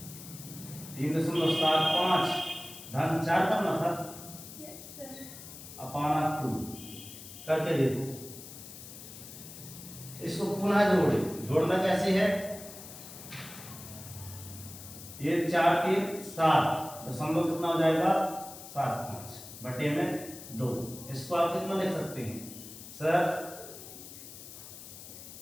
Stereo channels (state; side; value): noise; left; hiss, 14 dB below the sound